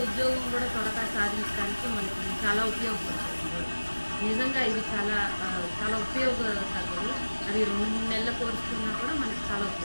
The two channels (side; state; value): both; inverted; correlation -1.00